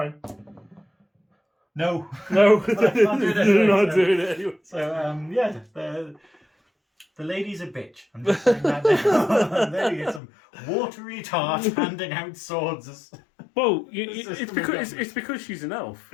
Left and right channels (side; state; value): right; drops out; at 10.2 s